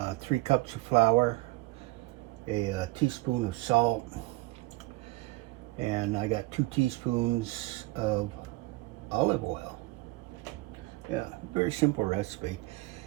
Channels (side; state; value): left; quieter; 21.5 dB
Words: 3 cups of flour, a teaspoon of salt, and I got 2 teaspoons of olive oil. Yeah, very simple recipe.